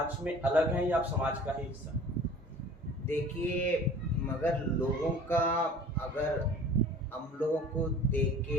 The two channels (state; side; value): normal; both; correlation 0.45